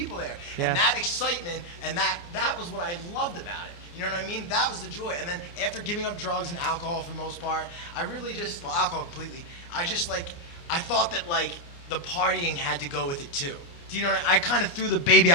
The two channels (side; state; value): right; late; 29 ms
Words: there. Yeah. And that excitement and that was what I loved about it. You know what I mean? That was the joy. And then after giving up drugs and alcohol for the most part, I really just, well, alcohol completely, I thought that like the partying had to go with it too. Do you know what I kind of threw the baby